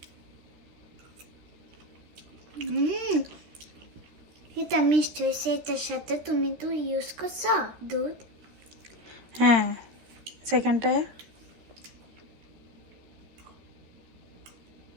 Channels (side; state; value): left; late; 13 ms